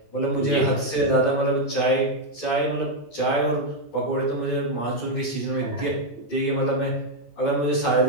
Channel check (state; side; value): late; right; 18 ms